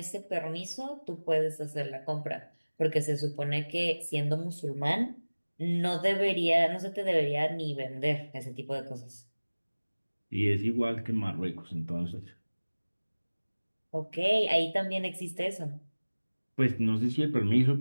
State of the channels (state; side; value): inverted; both; correlation -1.00